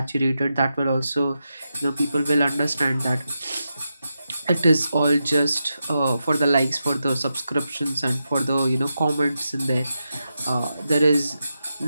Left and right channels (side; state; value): both; inverted; correlation -0.88